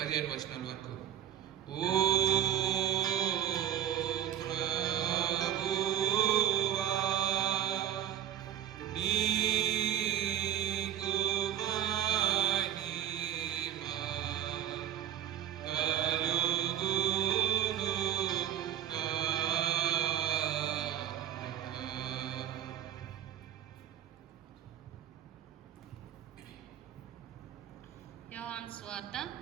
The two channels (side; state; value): left; quieter; 10.4 dB